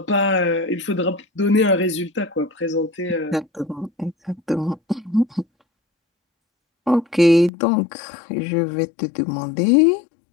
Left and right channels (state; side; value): drops out; right; at 7.5 s